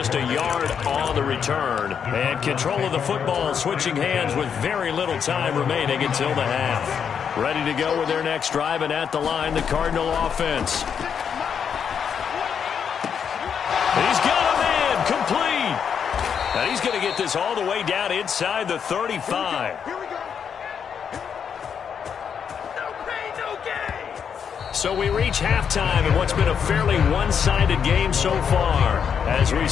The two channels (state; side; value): quieter; right; 7.3 dB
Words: a yard on the return. And control of the football switching hands with very little time remaining until the half. Ready to go with their next drive, and at the line, the Cardinal offense. He's got a man complete. And he's going to get this all the way down inside the 35. So we reach halftime in what's been a fairly one-sided game so far. As we